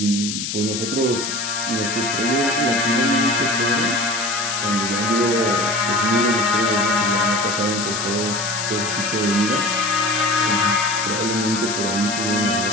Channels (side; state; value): left; noise; hiss, 4 dB below the sound